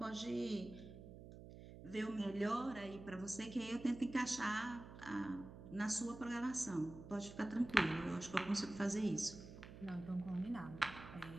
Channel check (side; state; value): right; noise; hum, 14 dB below the sound